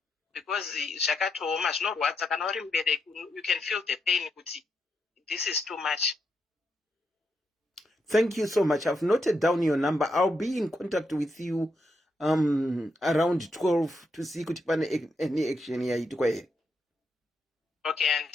because zvakatooma zvinorwadza kana uri mubereki, you can feel the pain kuti this is too much. Thank you so much. I've noted down your number. I'll be in contact with you around 12 to see kuti pane any action yaitwa here. Okay, and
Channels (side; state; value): both; normal; correlation 0.81